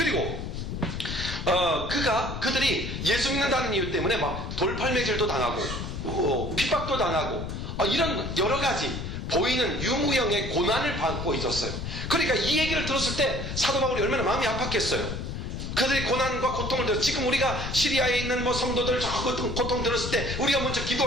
그들이 예수 믿는다는 이유 때문에 막 돌팔매질도 당하고 핍박도 당하고 이런 여러 가지 보이는 유무형의 고난을 받고 있었어요. 그러니까 이 얘기를 들었을 때 사도 바울이 얼마나 마음이 아팠겠어요. 그들이 고난과 고통을 들었어요. 지금 우리가 시리아에 있는 성도들 저 고통 들었을 때 우리가 먼저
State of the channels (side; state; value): left; noise; rumble, 5 dB below the sound